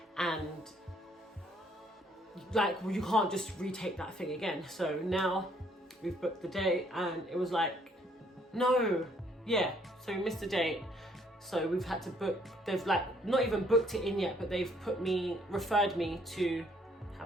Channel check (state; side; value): normal; both; correlation 0.65